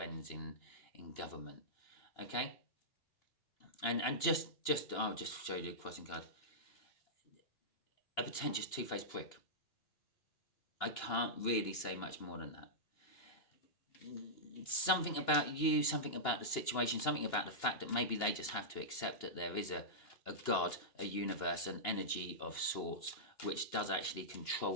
in government. Okay? And I'll just show you the crossing card. A pretentious two-faced prick. I can't really say much more than that. Something about you, something about the situation, something about the fact that maybe they just have to accept that there is a God, a universe, an energy of sorts, which does actually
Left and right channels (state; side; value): late; right; 2.9 ms